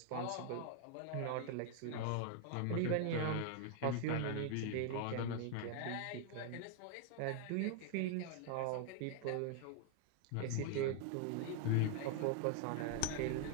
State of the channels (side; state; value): both; different; correlation 0.00